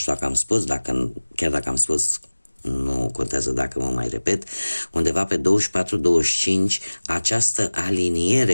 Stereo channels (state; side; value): inverted; both; correlation -1.00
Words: dacă am spus, chiar dacă am spus, nu contează dacă mă mai repet, undeva pe 24-25 această